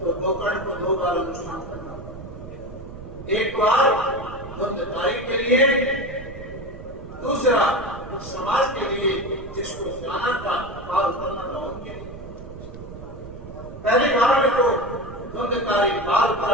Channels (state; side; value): noise; right; rumble, 13 dB below the sound